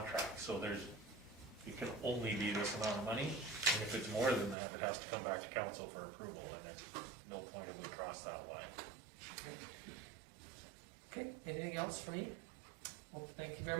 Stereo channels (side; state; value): left; drops out; at 4.5 s